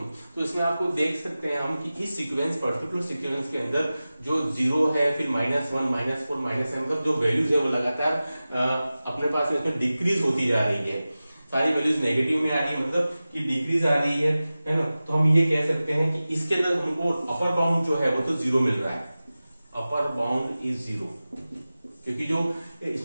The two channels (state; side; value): inverted; both; correlation -0.96